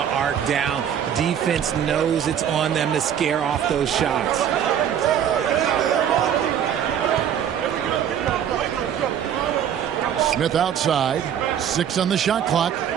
arc down. Defense knows it's on them to scare off those shots. Smith outside. 6 on the shot clock.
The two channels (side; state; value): left; quieter; 9.2 dB